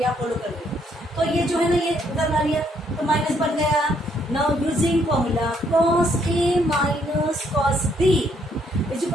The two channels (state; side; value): normal; both; correlation 0.70